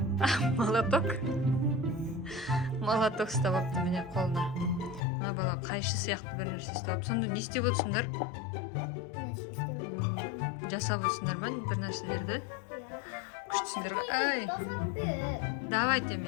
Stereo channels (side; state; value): right; drops out; at 5.0 s